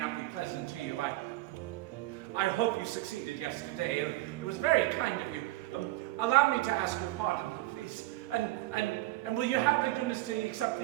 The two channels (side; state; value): left; quieter; 18.2 dB